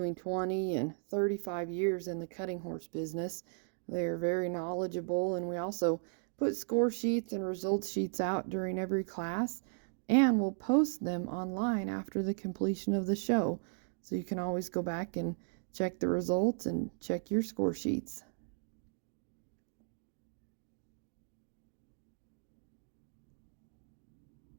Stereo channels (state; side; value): silent; left; digital silence